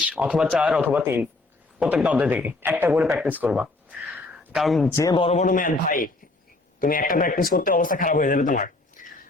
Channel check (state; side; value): quieter; right; 3.1 dB